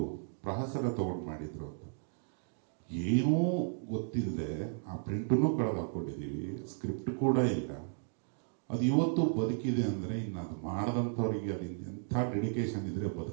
ಪ್ರಹಸನ ತಗೊಂಡು ಮಾಡಿದ್ರು ಅಂತ. ಏನೂ ಗೊತ್ತಿಲ್ಲದೆ ಆ ಪ್ರಿಂಟನ್ನು ಕಳೆದು ಹಾಕೊಂಡಿದ್ದೀವಿ, ಸ್ಕ್ರಿಪ್ಟ್ ಕೂಡ ಇಲ್ಲ. ಅದು ಇವತ್ತು ಬದುಕಿದೆ ಅಂದರೆ ಇನ್ನು ಅದು ಮಾಡಿದಂಥವ್ರಿಗೆ ಅದು ಎಂಥ ಡೆಡಿಕೇಶನ್ ಇದ್ರೆ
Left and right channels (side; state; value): left; silent; digital silence